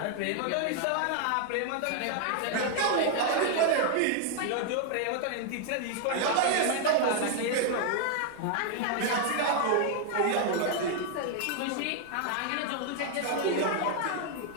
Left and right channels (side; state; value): both; different; correlation 0.00